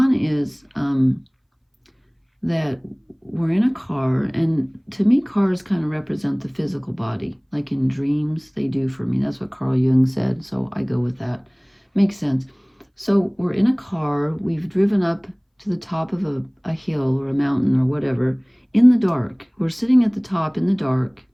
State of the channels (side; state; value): both; identical; correlation 1.00